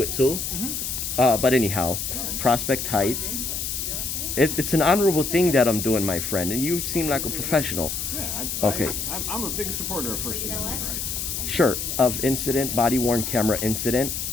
it too. But anyhow, Prospect Heights. It's an honorable thing that I'm doing, my friend, and you seem like a professional. Yeah. Okay. I'm a big supporter of First Amendment rights. Sure. Of incident, body-worn camera incident.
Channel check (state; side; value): noise; left; hiss, 3 dB below the sound